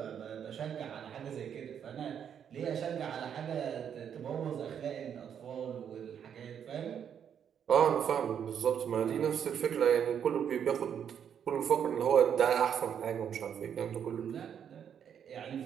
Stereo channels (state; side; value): quieter; left; 8.4 dB